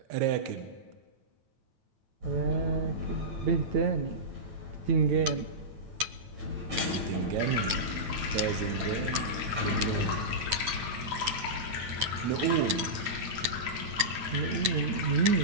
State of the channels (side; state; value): left; late; 9.1 ms